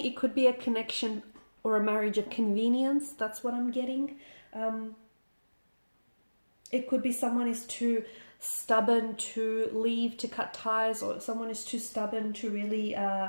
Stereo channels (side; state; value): both; inverted; correlation -1.00